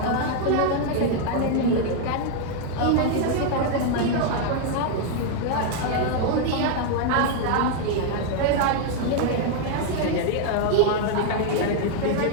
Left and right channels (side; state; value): both; different; correlation 0.00